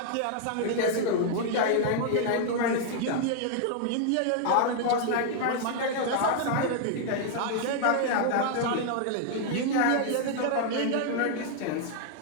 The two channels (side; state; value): both; different; correlation 0.00